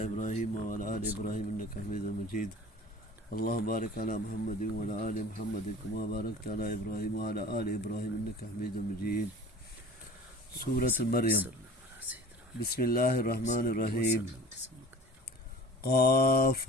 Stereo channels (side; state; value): both; normal; correlation 0.42